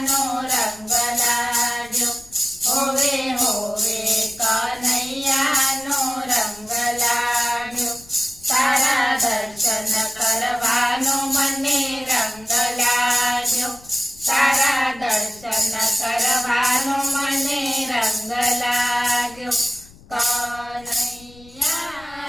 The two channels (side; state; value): left; noise; rumble, 23 dB below the sound